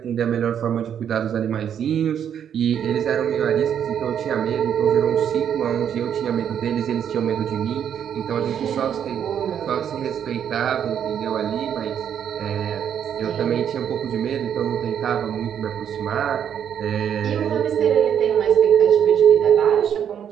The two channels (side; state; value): left; quieter; 8.8 dB